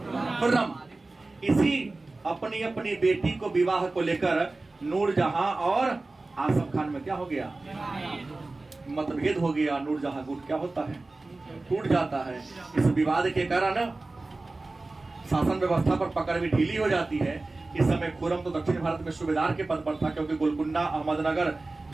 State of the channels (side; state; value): left; quieter; 3.2 dB